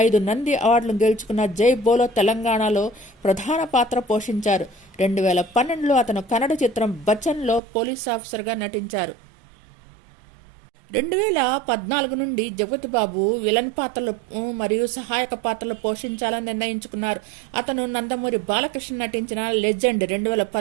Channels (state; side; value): drops out; left; at 7.6 s